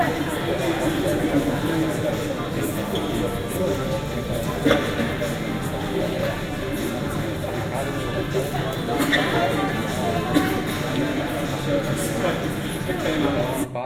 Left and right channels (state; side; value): identical; both; correlation 1.00